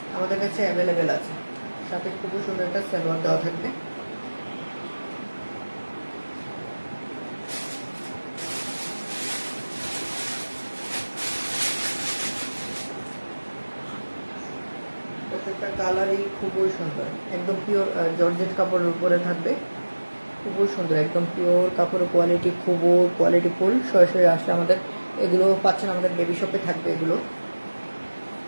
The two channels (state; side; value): inverted; both; correlation -1.00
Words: আমাদের কাছে অ্যাভেলেবেল আছে। সাথে খুবই সুন্দর একটা সালোয়ার দেওয়া থাকবে। প্রত্যেকটা কালারই খুবই সুন্দর, একদম পিওর জর্জেট কাপড়ের উপরে থাকবে। খুবই সুন্দর, একদম পিওর কাপড়ের কোয়ালিটি, খুবই কোয়ালিটিফুল। সরাসরি আসলে আমাদের এগুলো পাচ্ছেন, আমাদের বেবি শপে থাকবে এগুলো।